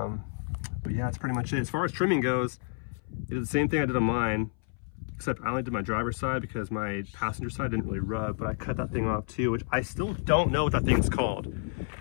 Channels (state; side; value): silent; right; 58 dB below the other